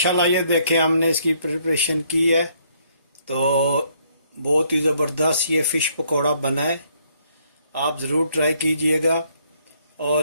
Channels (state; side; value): inverted; both; correlation -0.68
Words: ये देखें हमने इसकी प्रिपरेशन की है तो बहुत ही ज़बरदस्त ये फ़िश पकौड़ा बना है। आप ज़रूर ट्राई कीजिएगा